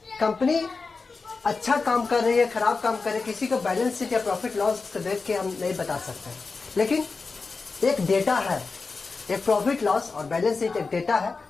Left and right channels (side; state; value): right; quieter; 4.3 dB